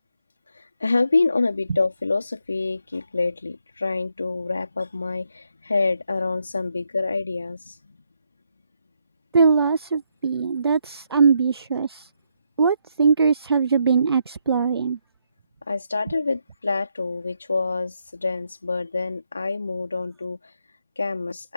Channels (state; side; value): inverted; both; correlation -0.79